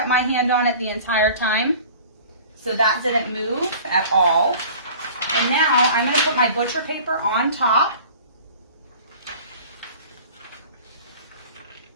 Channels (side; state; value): both; inverted; correlation -0.44